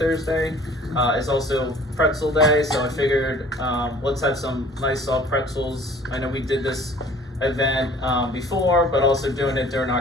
It's also Pretzel Day, so I figured let's have some nice soft pretzels. I know we did this event before, but also doing it during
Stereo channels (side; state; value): both; normal; correlation 0.51